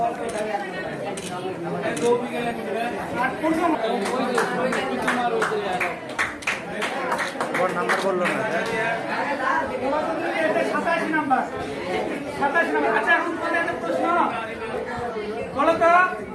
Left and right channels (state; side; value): identical; both; correlation 1.00